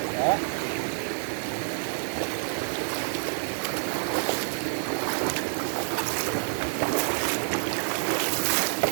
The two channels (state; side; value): silent; left; digital silence